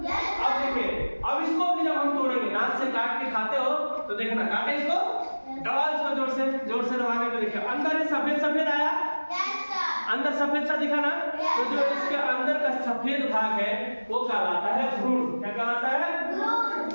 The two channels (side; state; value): both; inverted; correlation -1.00